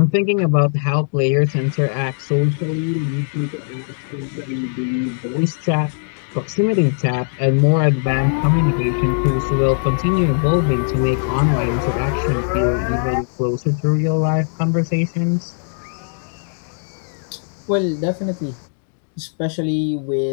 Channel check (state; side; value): silent; right; digital silence